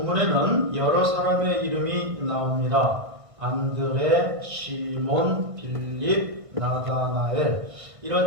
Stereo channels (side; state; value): left; late; 1.5 ms